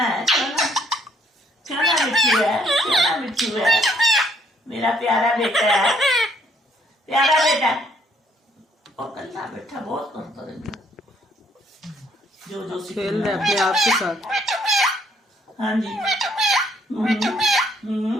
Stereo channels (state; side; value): normal; both; correlation 0.66